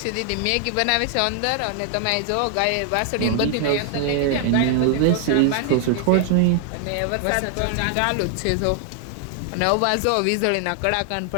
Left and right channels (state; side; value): different; both; correlation 0.00